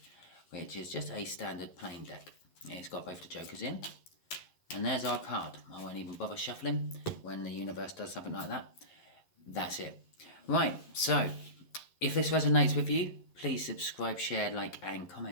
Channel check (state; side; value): late; right; 11 ms